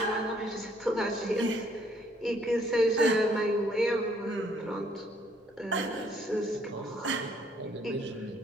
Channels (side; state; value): both; normal; correlation 0.65